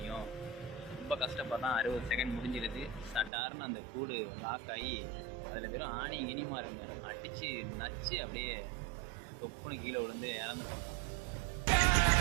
ரொம்ப கஷ்டப்படுறான். 60 செகண்ட் முடிஞ்சிருது. சட்டாருன்னு அந்த கூடு லாக் ஆகி அதில் வெறும் ஆணி இனிமா இருங்க அடித்து நச்சு அப்படியே தொப்புன்னு கீழே விழுந்து இறந்து போகிறான்.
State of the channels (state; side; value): drops out; left; at 3.3 s